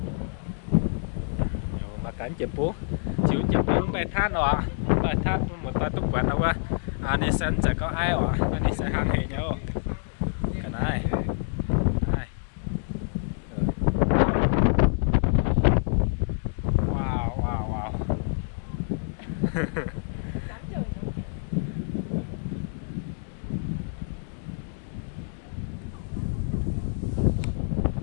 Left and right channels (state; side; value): silent; right; 60 dB below the other